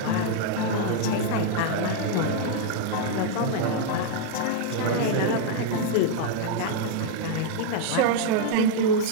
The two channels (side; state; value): both; different; correlation 0.00